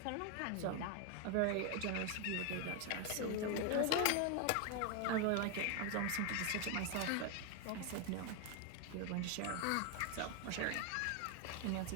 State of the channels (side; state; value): both; different; correlation 0.01